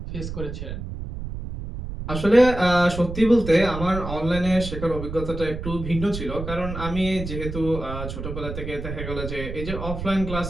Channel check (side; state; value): right; noise; rumble, 7 dB below the sound